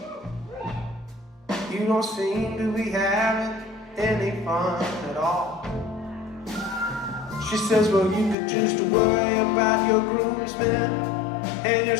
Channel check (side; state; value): right; drops out; at 8.3 s